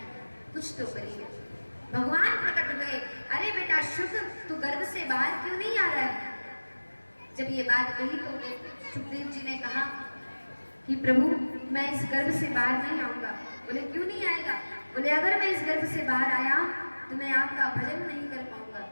कुछ तो करिए। भगवान प्रकट हुए, अरे बेटा शुभ तू गर्भ से बाहर क्यों नहीं आ रहा है। जब ये बात कही तो सुखदेव जी ने कहा कि प्रभु मैं इस गर्भ से बाहर नहीं आऊंगा। बोले क्यों नहीं आएगा। बोले अगर मैं इस गर्भ से बाहर आया तो मैं आपका भजन नहीं कर पाऊंगा।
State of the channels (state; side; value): inverted; both; correlation -1.00